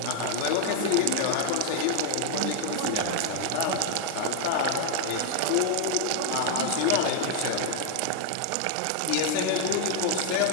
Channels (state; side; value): different; both; correlation 0.00